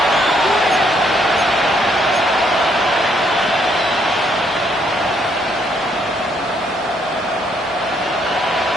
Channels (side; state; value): both; normal; correlation 0.70